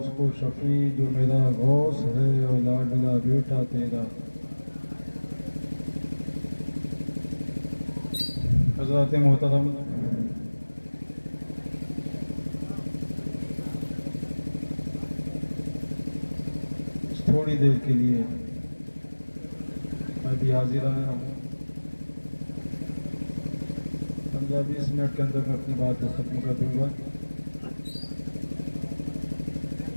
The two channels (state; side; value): inverted; both; correlation -1.00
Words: کو شفیع جو میرا غوث ہے اور لاڈلا بیٹا تیرا. حضرات محترم تھوڑی دیر کے لیے میں بھی حاضر آیا ہوں. 15-20 منٹ کے اندر میں اپنی بات کو ختم کر دوں گا.